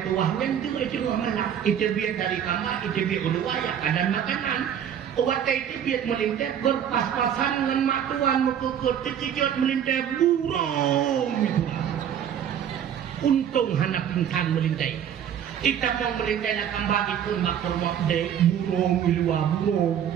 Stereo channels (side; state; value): left; quieter; 9.2 dB